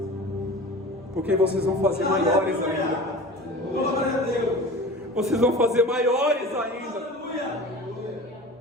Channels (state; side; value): normal; both; correlation 0.37